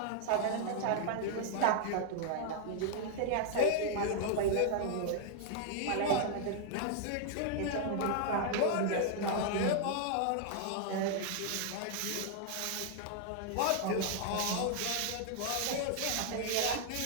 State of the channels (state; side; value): different; both; correlation -0.01